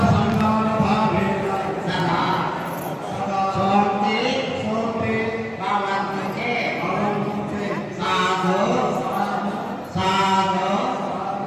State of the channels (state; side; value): identical; both; correlation 1.00